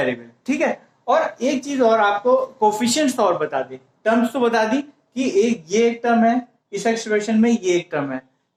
ठीक है। और एक चीज और आपको कोफिशिएंट्स और बता दी, टर्म्स तो बता दी कि ये एक टर्म है, इस एक्सप्रेशन में ये एक टर्म है।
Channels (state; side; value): identical; both; correlation 1.00